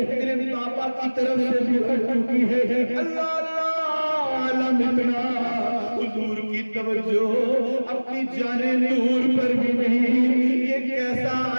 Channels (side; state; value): both; inverted; correlation -1.00